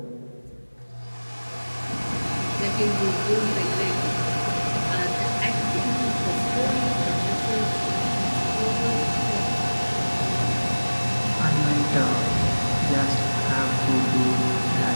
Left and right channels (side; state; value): both; inverted; correlation -1.00